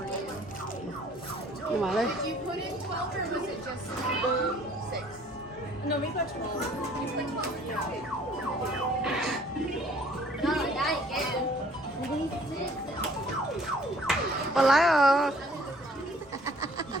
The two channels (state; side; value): normal; both; correlation 0.56